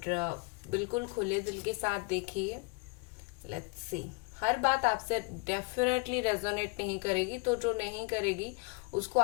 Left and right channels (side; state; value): right; quieter; 31.6 dB